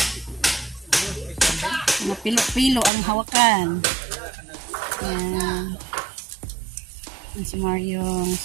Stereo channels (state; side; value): drops out; left; at 2.9 s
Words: pilo-pilo ang hawakan. Yan. Yan si Maryong.